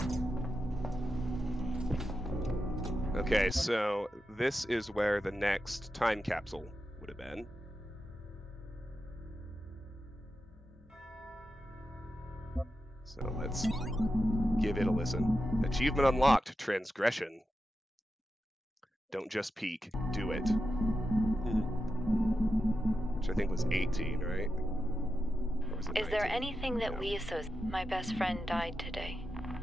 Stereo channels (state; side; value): normal; both; correlation 0.89